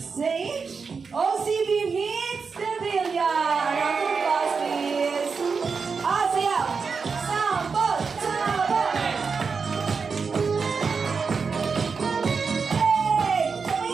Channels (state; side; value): quieter; left; 5.2 dB